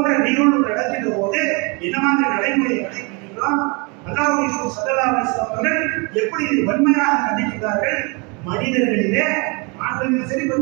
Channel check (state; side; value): quieter; left; 31.0 dB